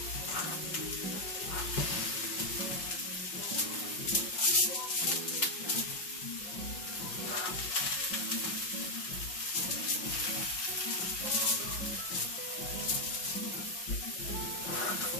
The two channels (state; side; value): late; right; 5.5 ms